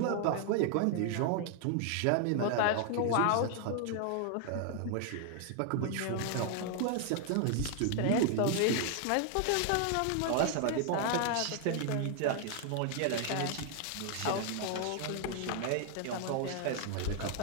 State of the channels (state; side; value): different; both; correlation 0.00